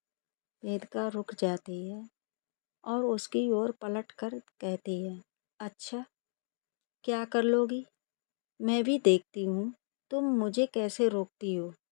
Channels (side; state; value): right; silent; digital silence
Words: वेदिका रुक जाती है और उसकी ओर पलट कर कहती है, अच्छा क्या कर लोगी? मैं भी देखती हूँ तुम मुझे कैसे रोकती हो।